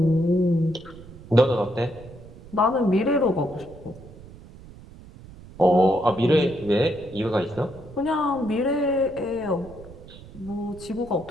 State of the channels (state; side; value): noise; right; rumble, 18 dB below the sound